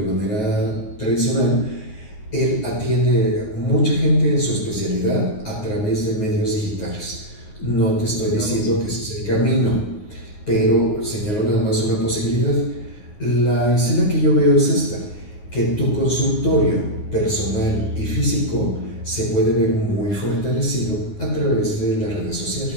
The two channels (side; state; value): right; late; 9.6 ms